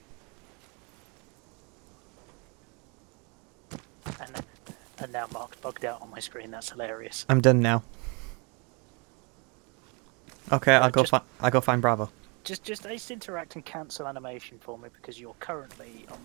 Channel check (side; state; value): left; quieter; 32.2 dB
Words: And now Mark's bugged out on my screen. That's hilarious. I'm done now. Okay, I'll go just- I'll go find Bravo. Just ace interact and cancel animation for me because you're currently on